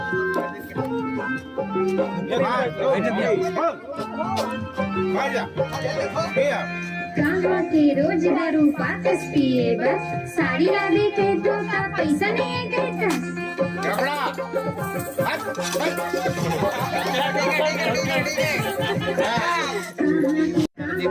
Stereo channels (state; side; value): identical; both; correlation 1.00